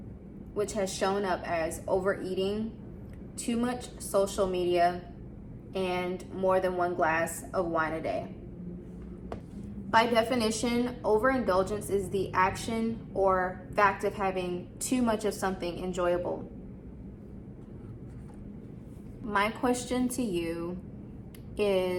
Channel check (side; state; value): both; identical; correlation 1.00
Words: which has shown up as overeating, too much social media, and more than one glass of wine a day. By definition, overindulgence is the action or fact of having too much of something enjoyable. My question to you